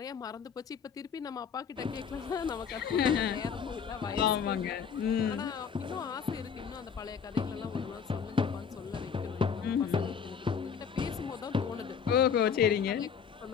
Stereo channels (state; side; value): quieter; right; 7.0 dB